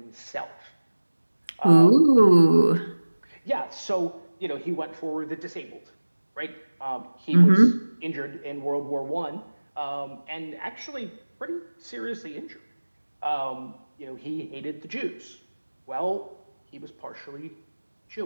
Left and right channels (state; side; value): inverted; both; correlation -1.00